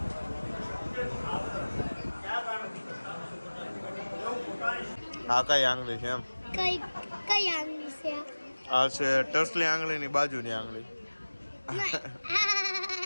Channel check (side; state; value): both; inverted; correlation -1.00